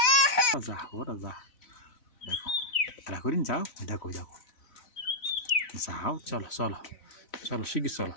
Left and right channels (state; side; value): late; right; 4.0 ms